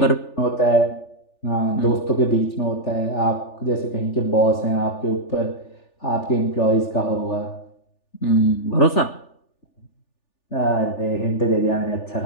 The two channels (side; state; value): right; late; 3.4 ms